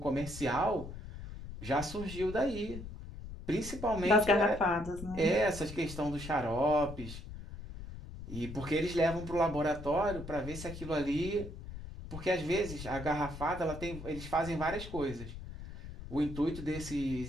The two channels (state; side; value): noise; left; rumble, 11 dB below the sound